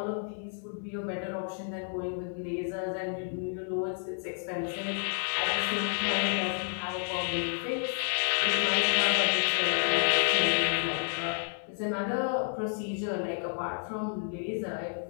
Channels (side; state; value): right; silent; 57 dB below the other